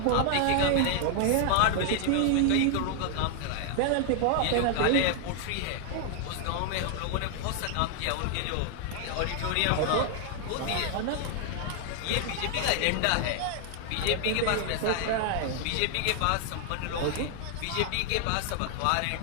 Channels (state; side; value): different; both; correlation 0.00